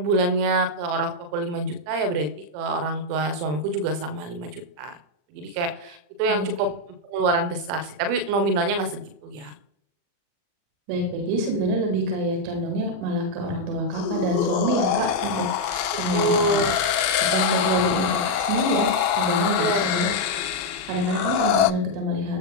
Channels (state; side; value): late; left; 39 ms